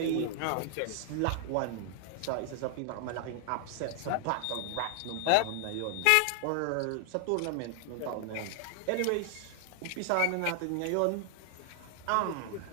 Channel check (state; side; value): different; both; correlation 0.00